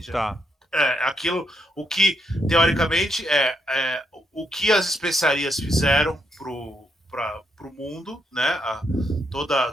Tá. Aquilo, o que, teoricamente, o que as especiarias fizeram pro mundo, né? Toda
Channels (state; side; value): normal; both; correlation 0.78